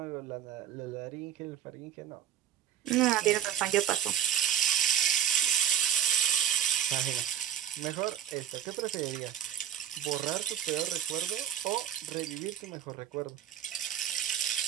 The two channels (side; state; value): left; quieter; 10.0 dB